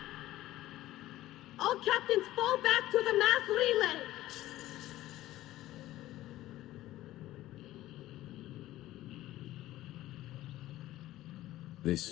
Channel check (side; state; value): right; quieter; 15.4 dB